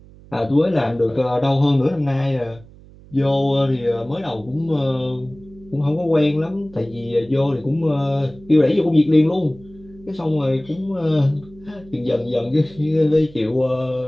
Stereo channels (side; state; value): right; noise; hum, 22 dB below the sound